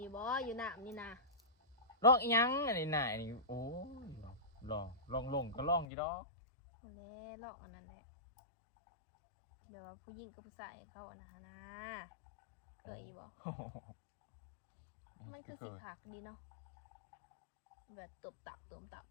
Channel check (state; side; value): drops out; right; at 5.9 s